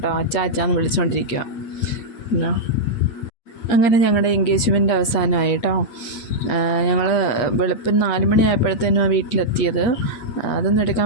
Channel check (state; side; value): late; right; 8.6 ms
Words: അച്ഛാന്ന് വിളിച്ചുകൊണ്ടിരിക്കുക. അങ്ങനെ ഞങ്ങളുടെ എൻഗേജ്മെൻറ്റ് അവസാനമായി കേട്ടോ. ഞങ്ങൾ വെളുപ്പിന് 4 മണിയായപ്പോഴത്തേനും ആ വീട്ടിലെത്തിയത്. അതൊന്നും